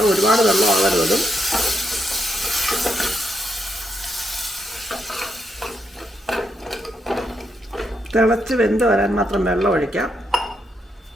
ഒരുപാട് വെള്ളം ആവരുതും. തിളച്ച് വെന്ത് വരാൻ മാത്രം വെള്ളം ഒഴിക്കാം.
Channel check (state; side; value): normal; both; correlation 0.80